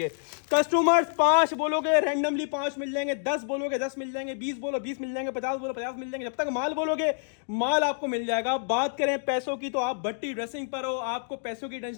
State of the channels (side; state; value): right; silent; digital silence